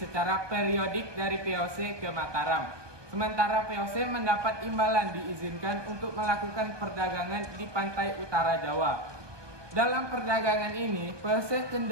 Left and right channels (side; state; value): left; late; 1.2 ms